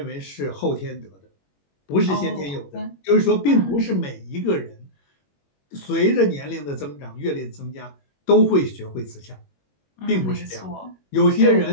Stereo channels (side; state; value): right; late; 21 ms